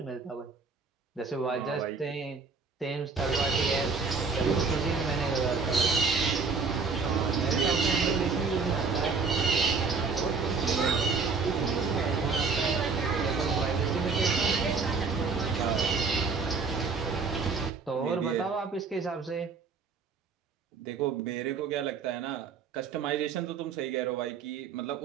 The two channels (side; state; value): left; quieter; 4.8 dB